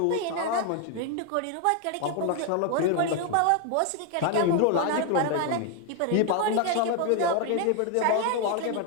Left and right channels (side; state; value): both; different; correlation 0.01